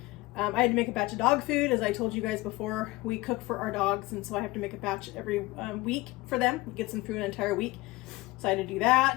I had to make a batch of dog food, as I told you guys before. We cook for our dogs, and so I have to make a batch every week for them. It gets them through an entire week, so I had to do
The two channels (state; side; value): quieter; right; 20.4 dB